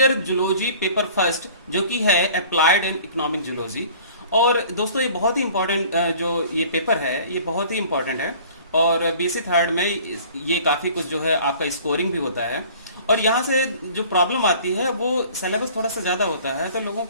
zoology paper first जो कि है अप्लाइड एंड इकोनॉमिक जूलॉजी। और दोस्तों ये बहुत ही इंपॉर्टेंट जो ये पेपर है ये बहुत ही इंपॉर्टेंट है। और बीएससी थर्ड में ये काफ़ी कुछ जो है आपका स्कोरिंग भी होता है। और यहाँ से जो प्रॉब्लम आती है वो सिलेबस थोड़ा सा ज़्यादा होता है, तो लोगों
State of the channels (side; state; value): both; inverted; correlation -0.48